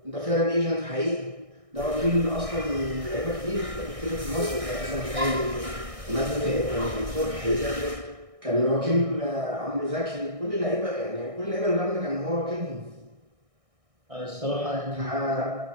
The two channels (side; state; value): left; late; 1.6 ms